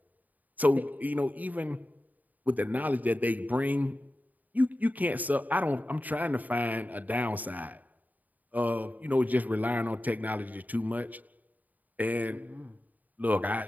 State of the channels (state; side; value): late; left; 0.080 ms